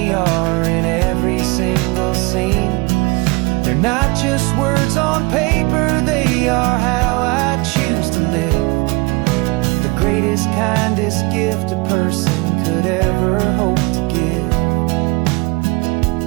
are in every single scene. They're not just words on paper, they are how I choose to live. The greatest, kindest gift a person could ever hope to give.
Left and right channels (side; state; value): left; quieter; 25.7 dB